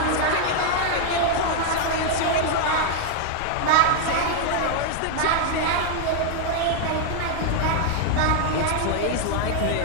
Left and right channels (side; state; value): both; different; correlation 0.00